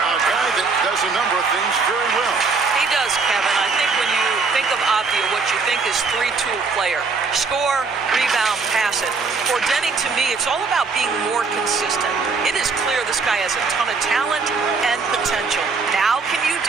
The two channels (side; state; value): left; quieter; 4.6 dB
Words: guy that does a number of things very well. He does, Kevin. I think when you think of Avdia, what you think is three-tool player. Score, rebound, pass it. For Denny, to me, it's all about being more consistent. It is clear this guy has a ton of talent and potential. Now can you